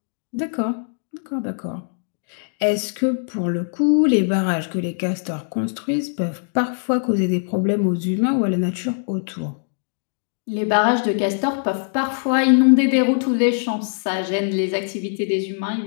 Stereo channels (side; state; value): right; silent; 64 dB below the other